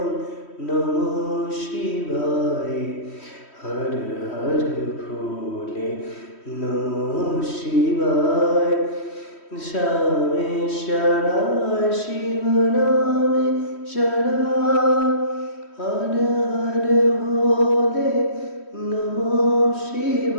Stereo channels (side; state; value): right; late; 3.1 ms